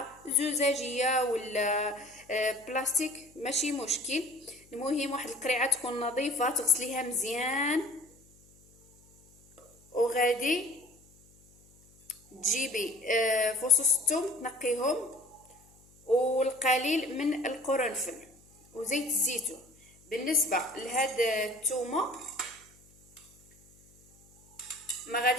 زجاجيه ولا بلاستيك ماشي مشكل، المهم واحد القرعه تكون نظيفه تغسليها مزيان، وغادي تجيبي فصوص الثوم تنقيهم والقليل من القرنفل وزيت الزيتون. بالنسبه لهاد الثومه ما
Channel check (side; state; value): left; noise; hum, 29 dB below the sound